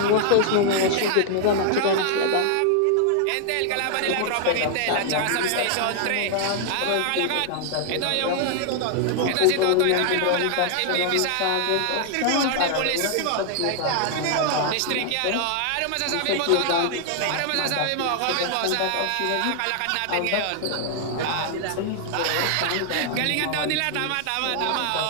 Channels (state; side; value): different; both; correlation 0.00